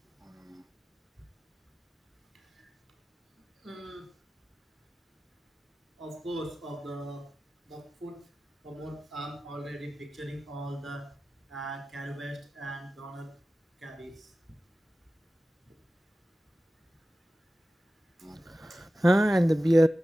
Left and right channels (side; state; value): both; normal; correlation 0.95